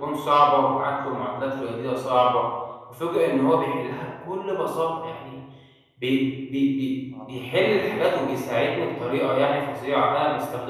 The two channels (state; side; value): identical; both; correlation 1.00